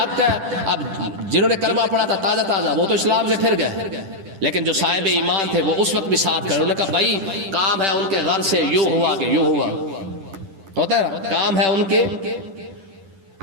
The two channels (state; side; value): late; left; 10 ms